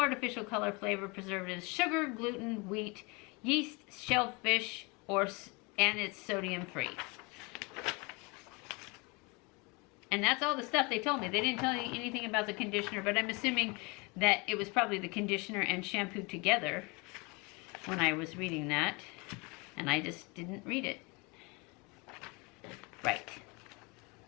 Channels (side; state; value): right; quieter; 28.3 dB